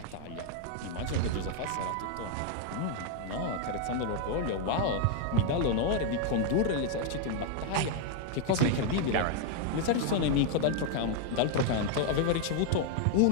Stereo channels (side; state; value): both; different; correlation 0.00